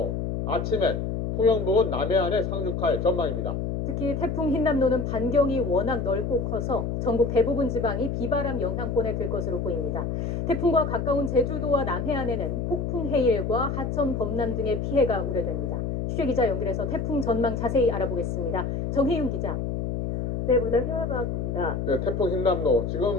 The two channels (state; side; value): noise; left; hum, 2 dB below the sound